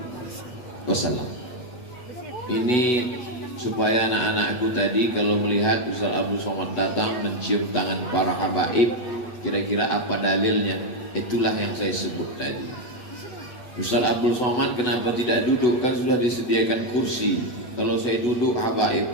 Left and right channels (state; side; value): late; right; 8.1 ms